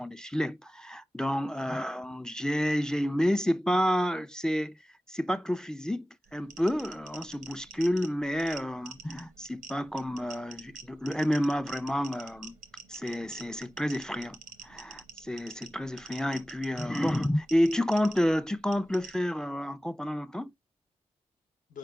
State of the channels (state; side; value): normal; both; correlation 0.96